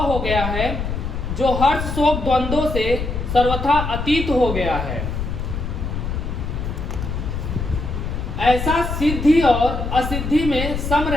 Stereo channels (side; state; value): left; noise; rumble, 4 dB below the sound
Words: हो गया है, जो हर्ष शोक द्वंद्वों से सर्वथा अतीत हो गया है। ऐसा सिद्धि और असिद्धि में सम